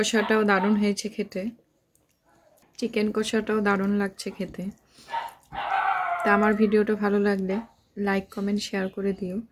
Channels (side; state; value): both; identical; correlation 1.00